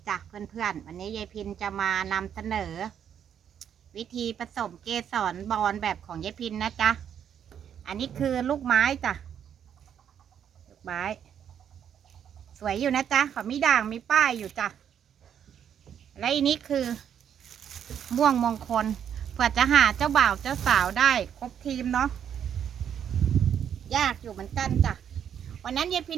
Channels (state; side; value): quieter; left; 8.8 dB